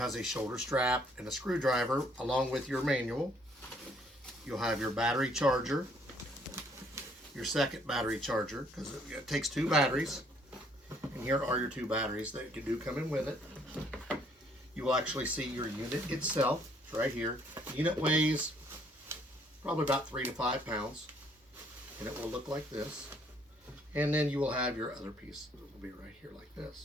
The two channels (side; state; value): both; normal; correlation 0.64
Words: a shoulder strap and a screwdriver along with your manual. You'll have your battery charger, your second battery charger, because it takes two batteries. And here are your two batteries that do come in with it. You will actually see your unit itself. It's right here. The unit weighs probably about 3 to 5 pounds, and it will look like this. And then you will have your other piece. It will be right here like